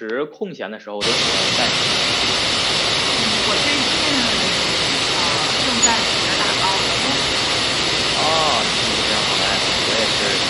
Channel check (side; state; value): both; identical; correlation 1.00